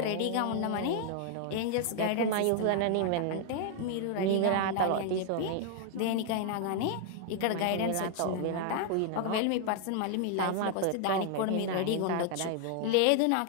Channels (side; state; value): both; different; correlation 0.00